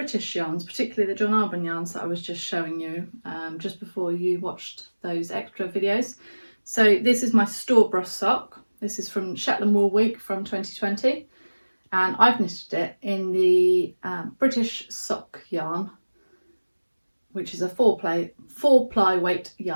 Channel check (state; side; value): inverted; both; correlation -1.00